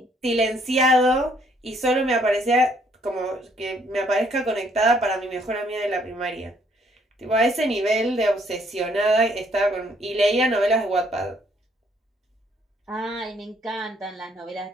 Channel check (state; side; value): normal; both; correlation 0.66